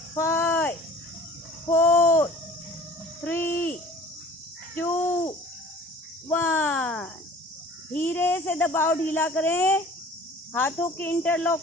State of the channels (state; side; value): normal; both; correlation 0.46